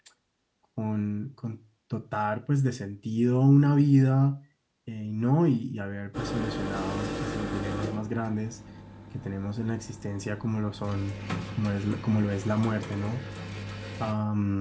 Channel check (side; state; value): both; identical; correlation 1.00